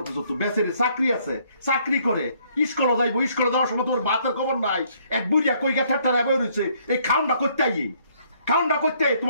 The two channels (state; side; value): inverted; both; correlation -0.66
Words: করতো বেচারি চাকরি আছে চাকরি করে স্কুলে যাইবো স্কুলে যাওয়ার সময় তোর ভাতের খবর নাই এক বুড়িয়া কইগা ঠাট্টা বই রয়েছে এই খাউনটা করতে